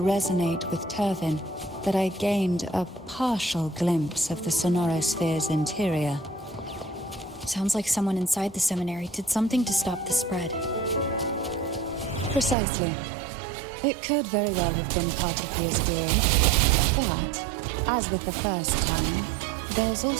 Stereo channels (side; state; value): left; drops out; at 12.6 s